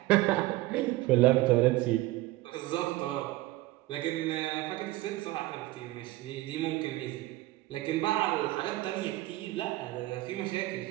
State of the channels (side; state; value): left; quieter; 18.2 dB